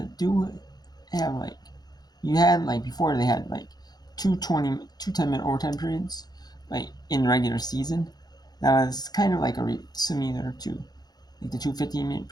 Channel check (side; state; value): right; late; 0.19 ms